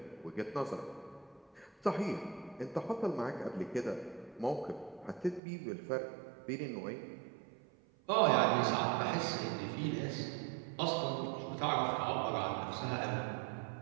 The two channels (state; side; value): drops out; left; at 5.4 s